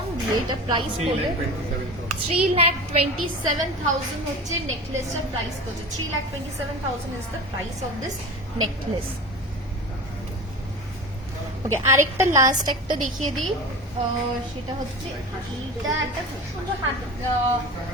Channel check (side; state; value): both; normal; correlation 0.32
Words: দিয়ে এটা প্রাইস পড়বে 3,27,000 হচ্ছে নেকলেসটার প্রাইস পড়ছে। 3,27,000 is the price of this necklace. Okay, আরেকটা লাস্ট একটা দেখিয়ে দিই, সেটা হচ্ছে এইটা একটা খুব সুন্দর